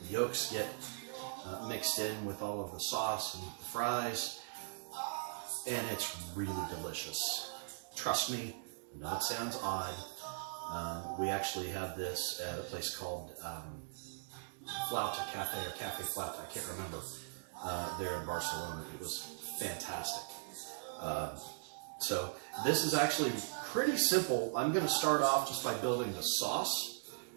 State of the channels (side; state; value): left; silent; digital silence